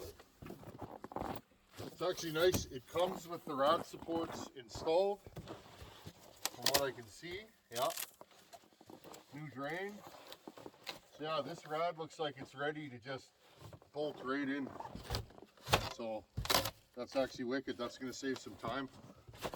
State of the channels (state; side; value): identical; both; correlation 1.00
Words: It's actually nice. It comes with the rad supports installed. From what I can see, yeah. New drain. So yeah, this rad looks like it's ready to just bolt right in. So that's actually wicked. That's going to save some time.